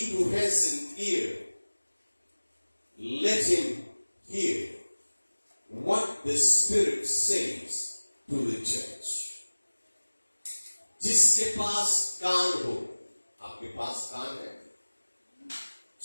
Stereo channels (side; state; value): both; inverted; correlation -1.00